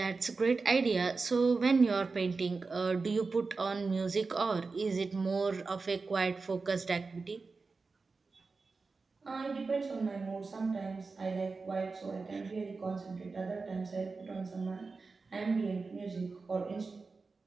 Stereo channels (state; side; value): quieter; left; 4.2 dB